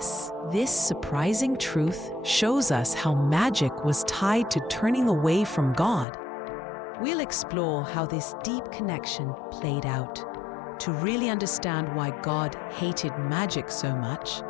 This surprising truth shows us how magic was tied to turning away from God. We'll explore how this deep connection played out. To really understand why God hated magic so much,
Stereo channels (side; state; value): right; drops out; at 6.1 s